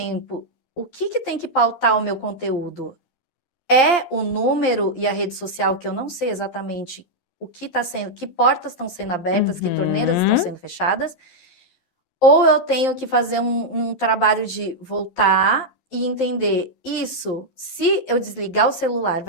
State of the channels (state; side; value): late; right; 11 ms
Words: o que tem que pautar o meu conteúdo? É o número e a rede social, que eu não sei exatamente o que está sendo, que portas estão sendo abertas, que torneiras estão Uhum. sendo fechadas, ou eu tenho que fazer um trabalho de voltar e entender isso, se eu desligar o celular,